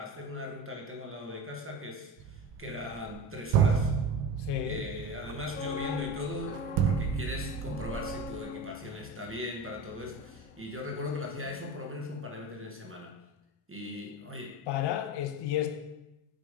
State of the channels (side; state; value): both; normal; correlation 0.28